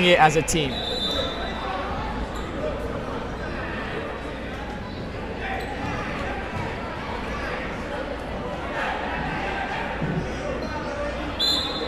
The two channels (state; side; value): identical; both; correlation 1.00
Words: it as a team.